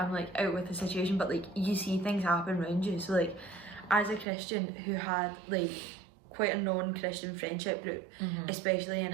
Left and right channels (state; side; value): drops out; left; at 4.2 s